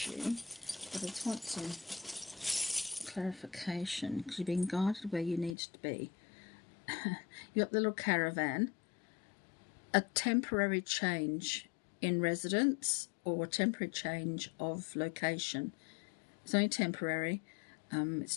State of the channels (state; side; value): drops out; right; at 5.6 s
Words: but I just want some clarification because you're being guided where you need to be. You got the little caravan, a temporary change in residence or a temporary change of location. It's only temporary.